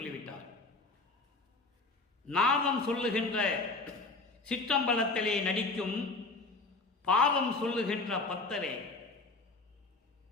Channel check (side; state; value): right; quieter; 3.5 dB